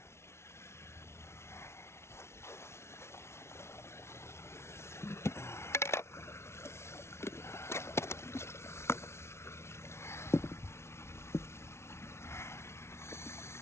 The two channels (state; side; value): late; right; 0.13 ms